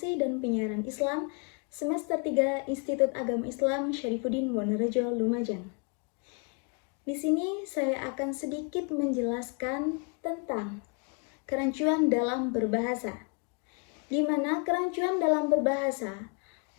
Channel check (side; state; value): right; quieter; 36.8 dB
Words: dan Penyiaran Islam Semester 3 Institut Agama Islam Syarifuddin Wonorejo, Lumajang. Di sini saya akan sedikit menjelaskan tentang kerancuan dalam berbahasa, di mana kerancuan dalam berbahasa